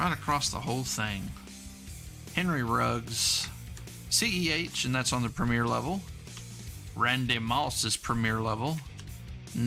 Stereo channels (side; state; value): both; identical; correlation 1.00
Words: across the whole thing. Henry Ruggs. CEH, and that's on the premier level. Randy Moss is premier level.